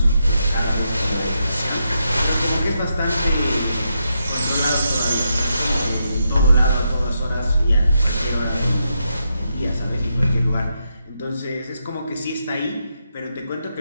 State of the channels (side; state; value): both; inverted; correlation -0.83